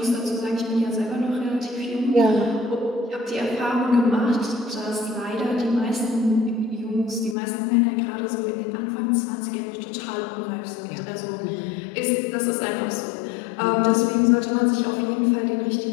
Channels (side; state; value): right; drops out; at 7.4 s